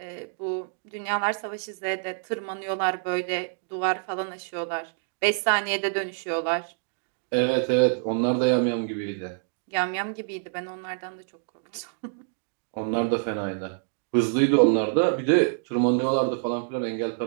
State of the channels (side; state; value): left; silent; digital silence